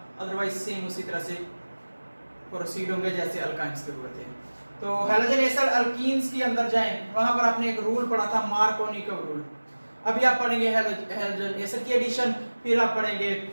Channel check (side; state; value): both; inverted; correlation -1.00